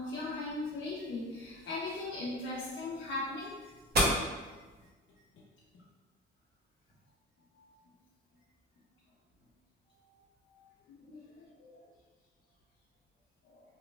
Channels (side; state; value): both; normal; correlation 0.29